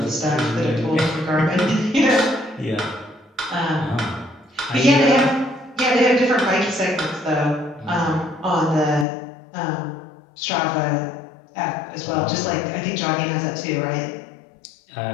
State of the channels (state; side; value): drops out; right; at 9.1 s